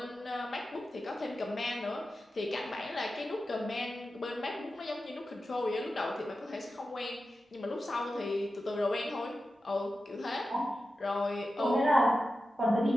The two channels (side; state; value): both; normal; correlation 0.92